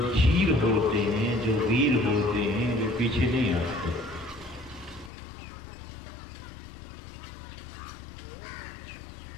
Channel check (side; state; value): right; drops out; at 5.1 s